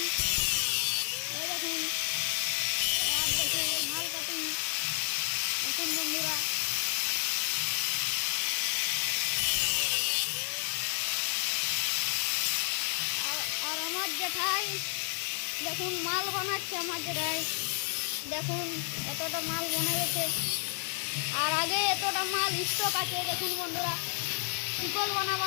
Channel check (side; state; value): right; silent; 57 dB below the other